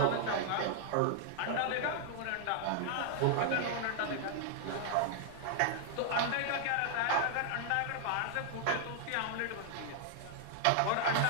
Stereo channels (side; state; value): both; different; correlation 0.00